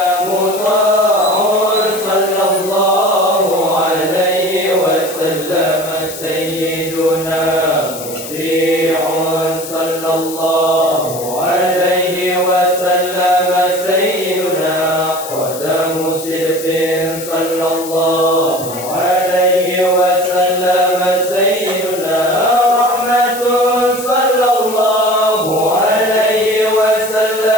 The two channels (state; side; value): noise; left; hiss, 11 dB below the sound